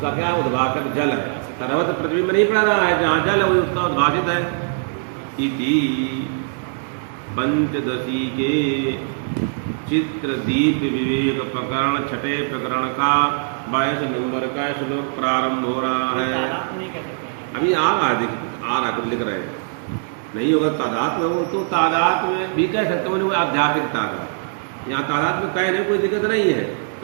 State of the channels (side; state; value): left; silent; digital silence